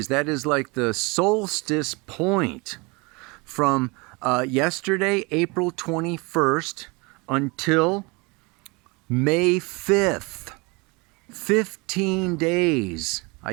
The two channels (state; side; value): quieter; left; 27.4 dB